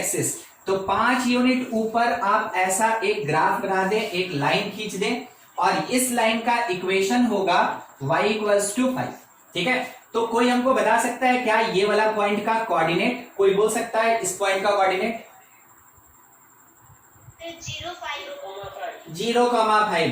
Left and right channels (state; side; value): identical; both; correlation 1.00